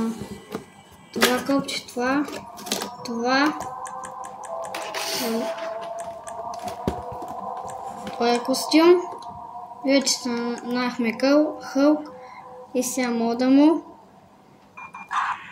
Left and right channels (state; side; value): identical; both; correlation 1.00